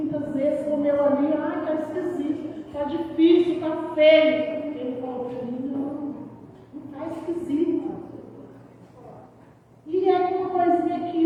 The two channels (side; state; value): both; identical; correlation 1.00